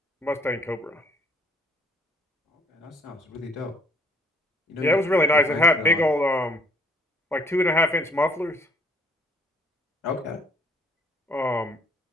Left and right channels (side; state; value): both; normal; correlation 0.61